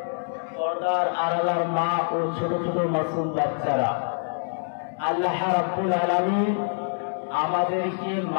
পর্দার আড়ালার মা ও ছোট ছোট মাসুম বাচ্চারা, আল্লাহ রাব্বুল আলামিন আমাদেরকে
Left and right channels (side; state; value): right; silent; digital silence